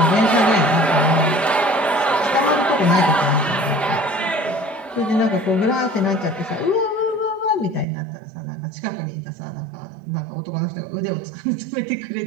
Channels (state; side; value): drops out; left; at 7.9 s